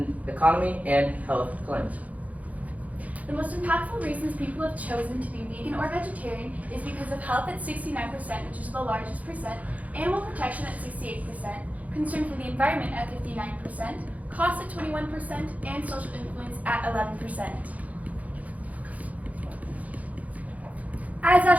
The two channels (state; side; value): late; left; 0.072 ms